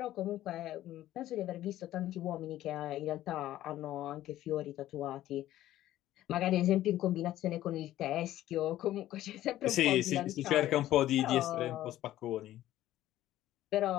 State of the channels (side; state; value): right; quieter; 14.0 dB